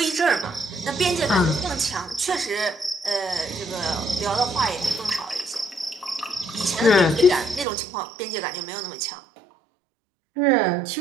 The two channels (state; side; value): drops out; left; at 7.7 s